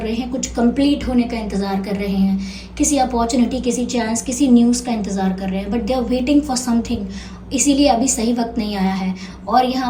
रहे हैं, कुछ कंप्लीट होने का इंतज़ार कर रहे हैं, किसी अपॉर्चुनिटी, किसी चांस, किसी न्यूज़ का इंतज़ार कर रहे हैं, but they are waiting for something. इसीलिए अभी सही वक्त नहीं आया है। और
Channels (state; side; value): identical; both; correlation 1.00